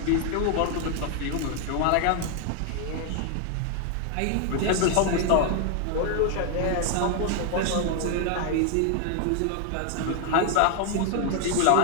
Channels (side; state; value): both; different; correlation 0.00